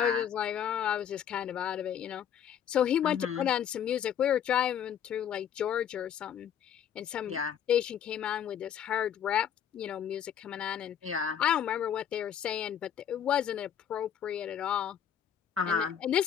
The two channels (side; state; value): right; quieter; 9.0 dB